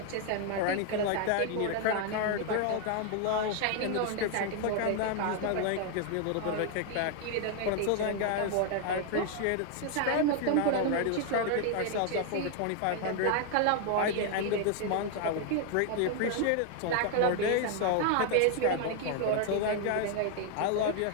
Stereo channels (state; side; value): different; both; correlation 0.00